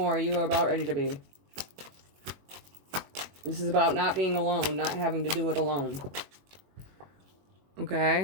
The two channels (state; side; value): late; left; 21 ms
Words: you are about ready to be. This is about not being alone, not having to do it alone.